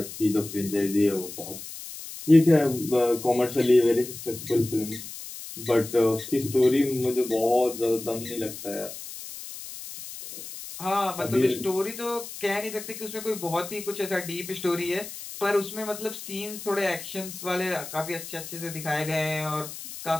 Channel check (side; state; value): left; noise; hiss, 11 dB below the sound